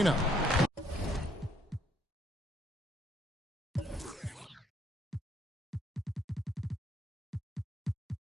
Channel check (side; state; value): both; normal; correlation 0.68